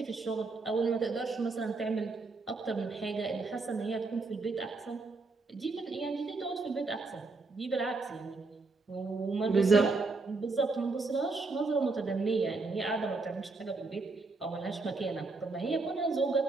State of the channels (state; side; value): quieter; left; 3.7 dB